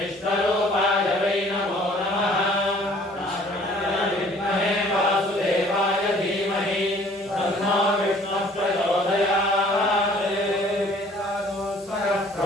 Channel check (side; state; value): both; normal; correlation 0.55